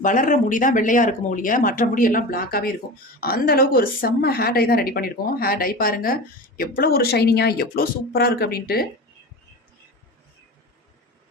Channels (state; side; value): normal; both; correlation 0.30